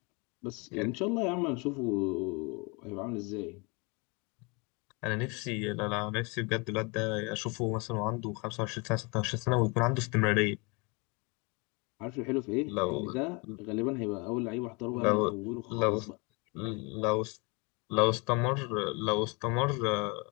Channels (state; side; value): quieter; right; 29.8 dB